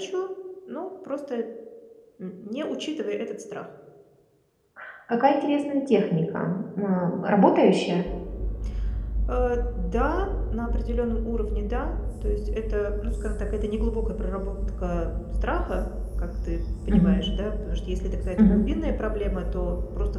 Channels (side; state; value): both; identical; correlation 1.00